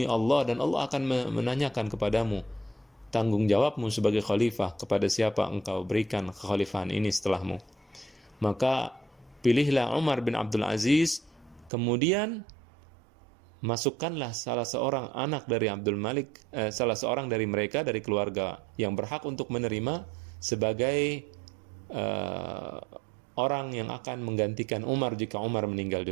Allah, dan Allah akan menanyakan kepadamu tanggung jawabmu sebagai khalifah, kepada siapa engkau berikan kekhalifahan ini setelahmu. Maka pilihlah Umar bin Abdul Aziz, kemudian masukkanlah salah seorang anak dari Abdul Malik, salah seorang dari mereka, dari keluarga yang berhak untuk menerima sebagai orang yang akan menggantikan Umar jika Umar meninggal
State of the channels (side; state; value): left; drops out; at 11.7 s